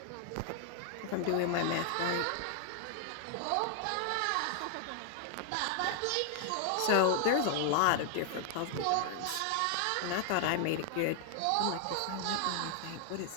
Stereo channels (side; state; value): both; different; correlation 0.00